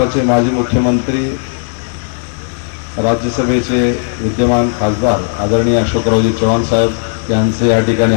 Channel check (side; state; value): right; silent; digital silence